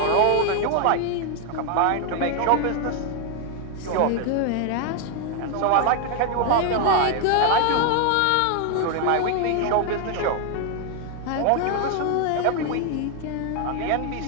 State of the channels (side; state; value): both; different; correlation 0.00